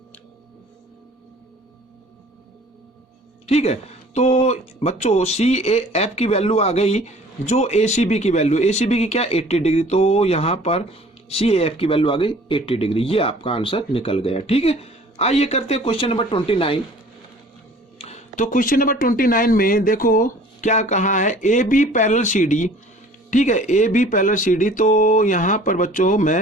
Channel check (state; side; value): normal; both; correlation 0.50